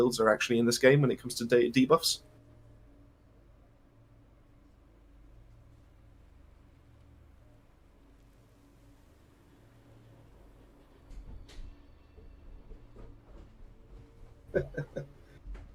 are actually in this game when it comes to debuffs?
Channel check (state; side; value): identical; both; correlation 1.00